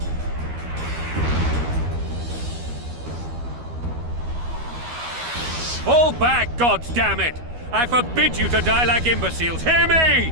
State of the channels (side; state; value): left; late; 12 ms